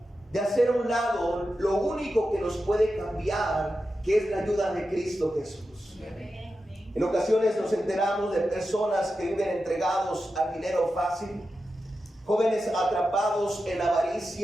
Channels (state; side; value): normal; both; correlation 0.91